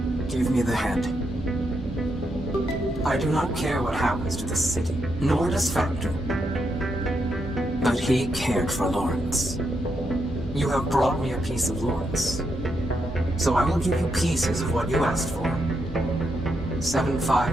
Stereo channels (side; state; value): both; normal; correlation 0.81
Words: Give me the head. I do not care what happens to the city, nor does Factor. But he cared for Lawrence. You have brought me a piece of Lawrence. So I will give you pieces of what you asked for.